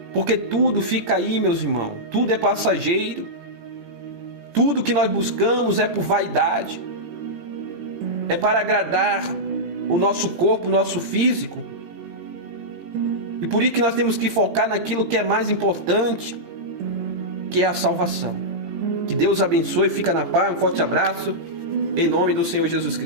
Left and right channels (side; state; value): left; late; 17 ms